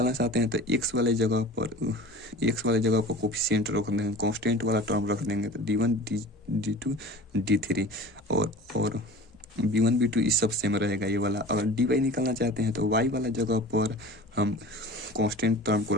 चाहते हैं तो x वाले जगह पर कोफिशिएंट रख देंगे, कांस्टेंट वाला टर्म रख देंगे, तो d1 d2 d3 और b1 b2 इस सब सेम रहेगा ये वाला। अगर dy निकालना चाहते हैं तो y वाला जगह पर हम कांस्टेंट टर्म को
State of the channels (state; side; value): normal; both; correlation 0.39